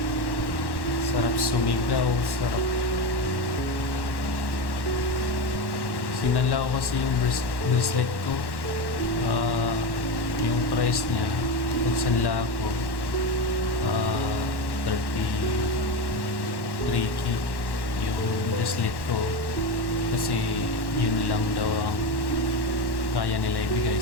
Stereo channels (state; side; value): late; right; 1.1 ms